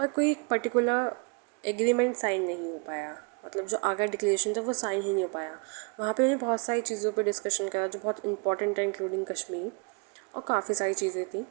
कोई पर्टिकुलर एग्रीमेंट साइन नहीं हो पाया। मतलब जो आगरा डिक्लेरेशन था वो साइन ही नहीं हो पाया। वहाँ पे उन्हें बहुत सारी चीज़ों पे डिस्कशन करा जो बहुत इंपॉर्टेंट है, इंक्लूडिंग कश्मीर और काफ़ी सारी चीज़ें थी,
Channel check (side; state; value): left; quieter; 34.2 dB